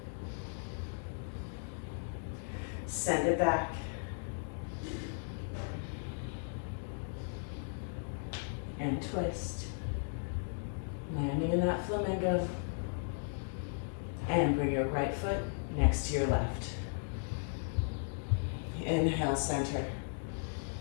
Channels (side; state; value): right; silent; digital silence